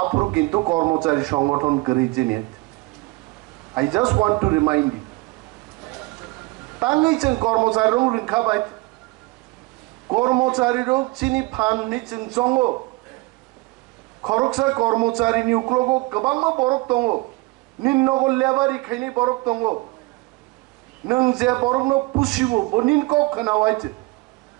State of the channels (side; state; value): left; quieter; 23.8 dB